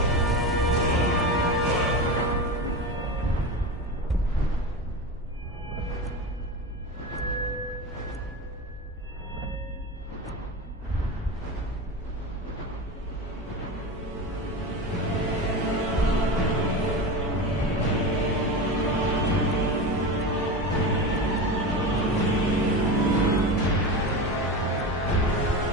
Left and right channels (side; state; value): both; normal; correlation 0.24